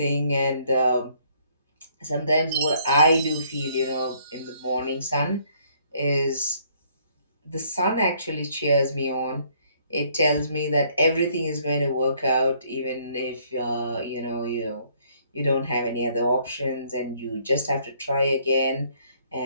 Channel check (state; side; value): inverted; both; correlation -0.65